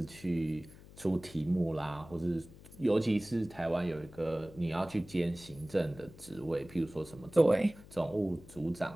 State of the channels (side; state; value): left; noise; hum, 19 dB below the sound